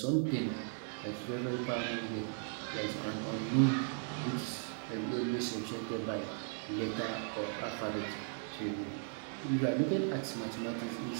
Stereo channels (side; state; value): left; silent; 53 dB below the other